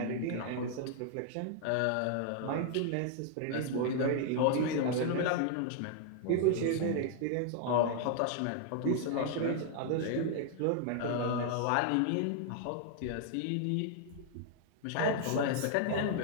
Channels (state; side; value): different; both; correlation 0.00